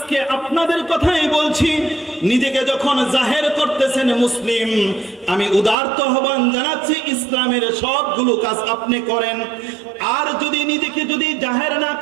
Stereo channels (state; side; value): drops out; left; at 5.8 s